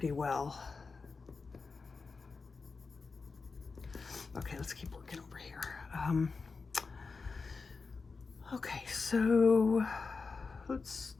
well. Okay, let's keep working over here. Okay, so let's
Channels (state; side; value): quieter; right; 4.5 dB